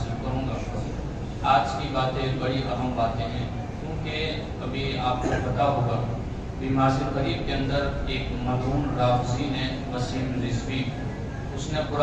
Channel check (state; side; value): identical; both; correlation 1.00